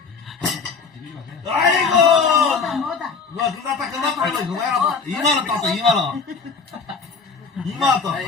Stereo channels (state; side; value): quieter; right; 5.0 dB